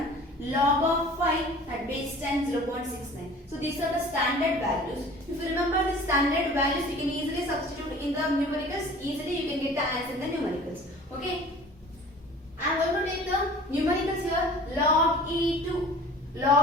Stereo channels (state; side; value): normal; both; correlation 0.45